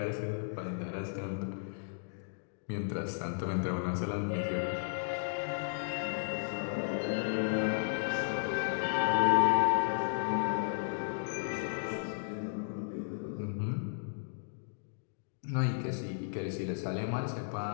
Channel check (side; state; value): right; silent; digital silence